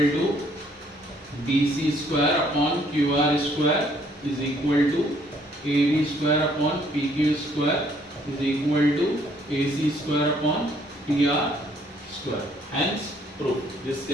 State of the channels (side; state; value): both; normal; correlation 0.65